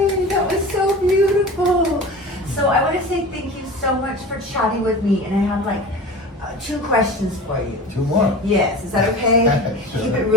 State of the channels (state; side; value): normal; both; correlation 0.35